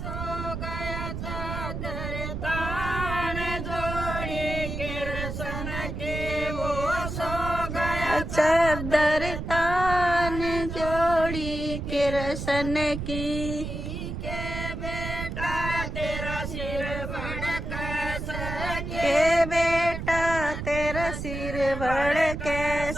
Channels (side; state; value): right; noise; rumble, 5 dB below the sound